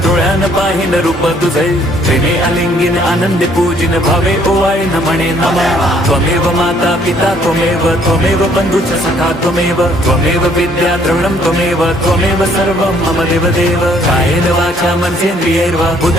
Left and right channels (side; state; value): both; normal; correlation 0.63